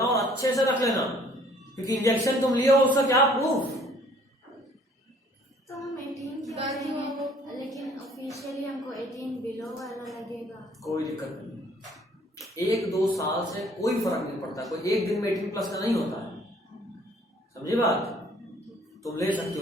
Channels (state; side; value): normal; both; correlation 0.58